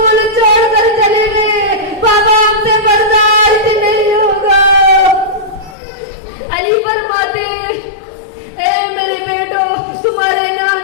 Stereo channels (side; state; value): right; drops out; at 5.8 s